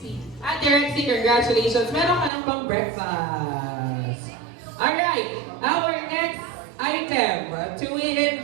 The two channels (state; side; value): drops out; left; at 2.3 s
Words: Ate Rexy, congratulations. Meron ka ng pang breakfast. Alright. Our next item.